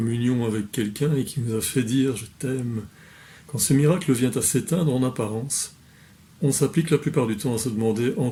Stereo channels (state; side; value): identical; both; correlation 1.00